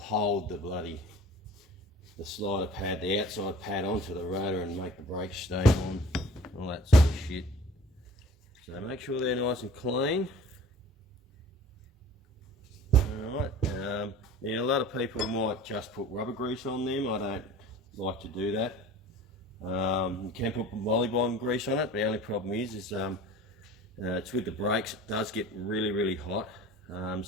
the slider pad, the outside pad, onto the rotor and make the brakes stay on, all that sort of shit. So make sure they're nice and clean. Alright, yeah, a lot of people might just put rubber grease on them. I don't like to do that. You can put volleyball grease on it. The only problem is it's with the brakes, it does get really hot.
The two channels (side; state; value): both; normal; correlation 0.44